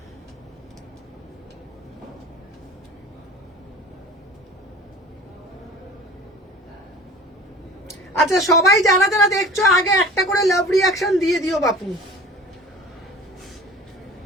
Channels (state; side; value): normal; both; correlation 0.42